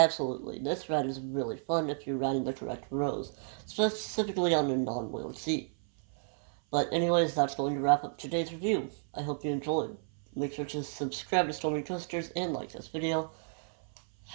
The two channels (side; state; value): left; silent; 56 dB below the other